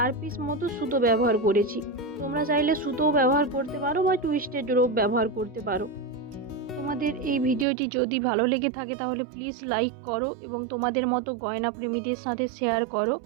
পিস মতো সুতো ব্যবহার করেছি। তোমরা চাইলে সুতোও ব্যবহার করতে পারো বা টুইস্টেড রোপ ব্যবহার করতে পারো। তোমাদের এই ভিডিওটি যদি ভালো লেগে থাকে তাহলে প্লিজ লাইক করো এবং তোমাদের মতো গয়না প্রেমীদের সাথে শেয়ার করো।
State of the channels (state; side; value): drops out; left; at 7.7 s